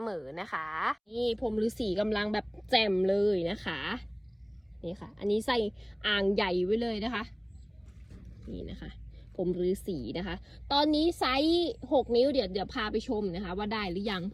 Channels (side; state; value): both; identical; correlation 1.00